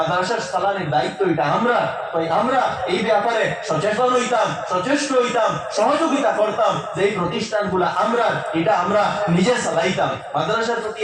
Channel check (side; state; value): both; identical; correlation 1.00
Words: চালানির দায়িত্ব এটা আমরা। তাই আমরা এই ব্যাপারে সচেতন হইতাম, সচেষ্ট হইতাম, সহযোগিতা করতাম যে এই প্রতিষ্ঠানগুলা আমরা, এটা আমরা নিজে চালাইতাম। মাদ্রাসার প্রতি